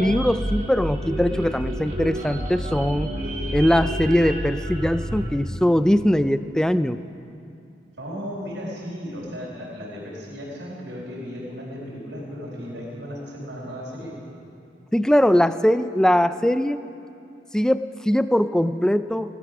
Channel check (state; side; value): normal; both; correlation 0.95